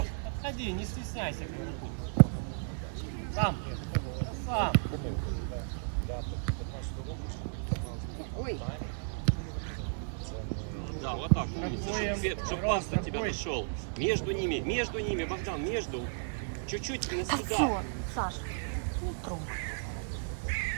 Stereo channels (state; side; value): silent; left; 55 dB below the other